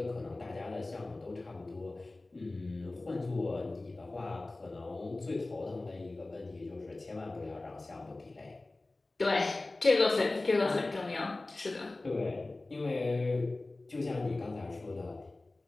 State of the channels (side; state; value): right; quieter; 3.0 dB